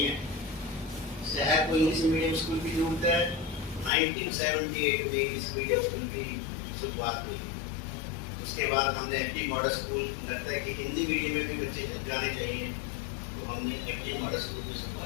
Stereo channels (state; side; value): drops out; right; at 3.9 s